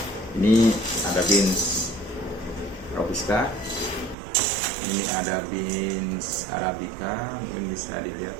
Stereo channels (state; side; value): drops out; left; at 4.2 s